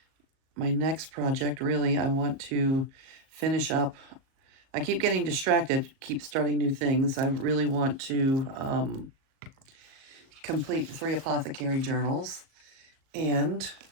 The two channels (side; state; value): left; late; 37 ms